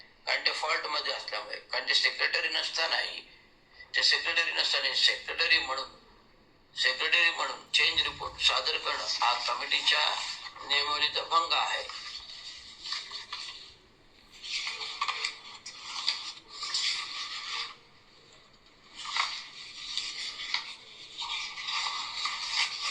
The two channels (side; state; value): both; identical; correlation 1.00